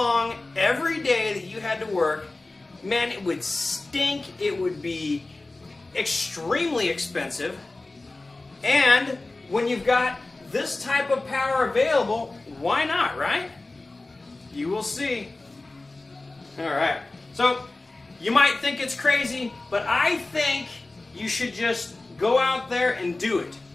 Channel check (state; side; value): quieter; right; 3.1 dB